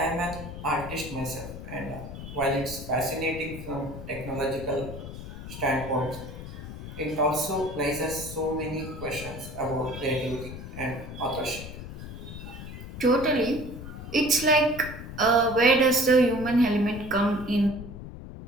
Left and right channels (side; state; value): left; noise; rumble, 11 dB below the sound